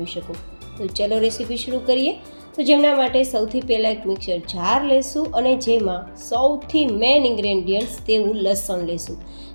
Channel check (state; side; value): inverted; both; correlation -1.00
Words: શકો. તો ચલો રેસીપી શરૂ કરીએ. તો જેમના માટે સૌથી પહેલાં એક મિક્સર જાર લેશું અને જેમાં સૌથી મેઇન ઇન્ગ્રેડિયન્ટ્સ તેવું લસણ લેશું.